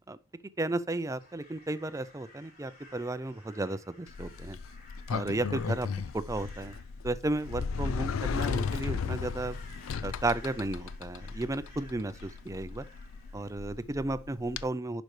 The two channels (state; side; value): normal; both; correlation 0.68